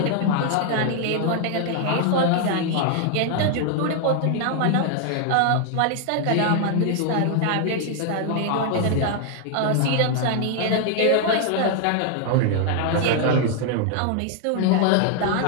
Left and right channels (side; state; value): both; different; correlation 0.00